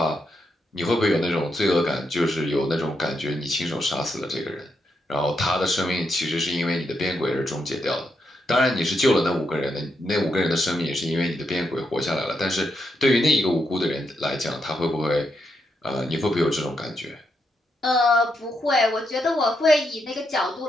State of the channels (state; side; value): normal; both; correlation 0.81